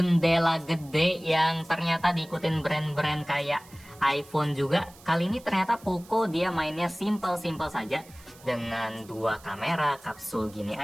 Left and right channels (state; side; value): noise; right; hiss, 23 dB below the sound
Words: gede yang ternyata diikutin brand-brand kayak iPhone juga. Kali ini ternyata Poco dia mainnya simple-simple saja dengan dua kamera kapsul gini